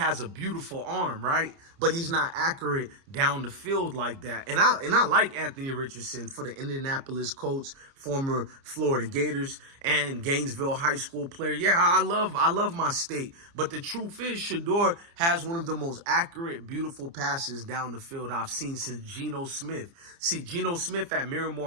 a beautiful arm, right? But he's not accurate down the field like that. And I like Anthony Richardson for the Indianapolis Colts, former Florida Gators, and Gainesville High School player. Yeah, I love my state. But the truth is, Shedeur has one of the most accurate, beautiful passes down the field I've seen since Geno Smith. See, Geno Smith at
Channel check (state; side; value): late; left; 29 ms